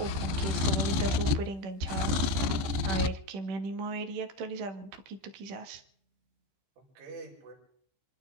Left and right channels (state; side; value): late; left; 15 ms